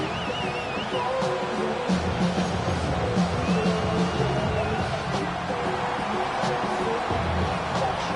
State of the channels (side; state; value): both; identical; correlation 1.00